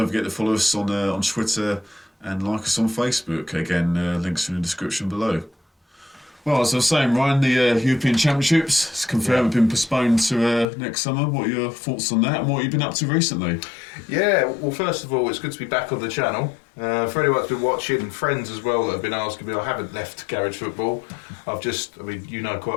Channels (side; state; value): right; drops out; at 10.7 s